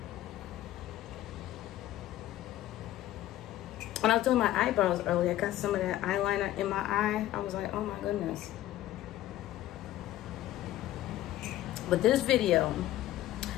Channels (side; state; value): right; quieter; 14.1 dB